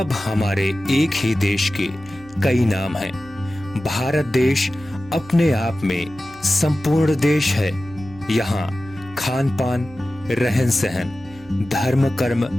हमारे एक ही देश के कई नाम हैं। भारत देश अपने आप में संपूर्ण देश है। यहाँ खान पान, रहन सहन, धर्म कर्म,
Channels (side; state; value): right; noise; hum, 24 dB below the sound